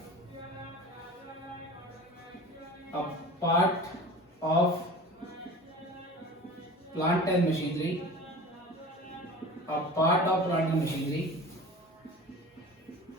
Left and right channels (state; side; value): normal; both; correlation 0.38